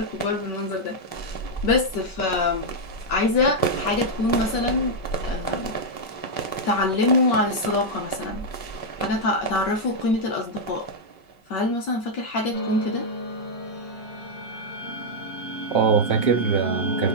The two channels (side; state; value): right; late; 5.3 ms